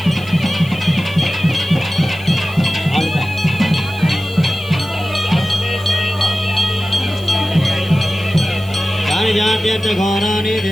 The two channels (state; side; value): noise; right; hiss, 24 dB below the sound